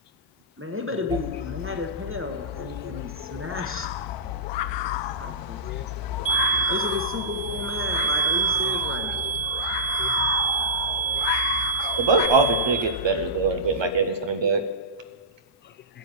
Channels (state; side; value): normal; both; correlation -0.19